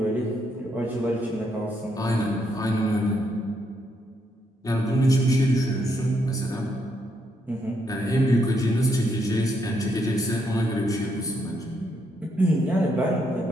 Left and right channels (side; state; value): both; normal; correlation 0.77